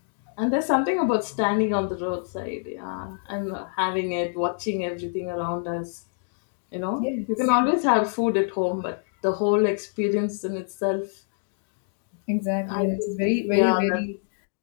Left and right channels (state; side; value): silent; right; digital silence